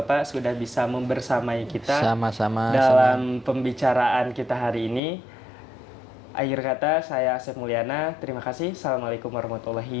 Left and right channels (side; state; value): right; drops out; at 5.0 s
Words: sudah bisa membersamai kita dalam pembicaraan kita hari ini. Akhir kata, saya Asep Mulyana. Terima kasih. Assalamualaikum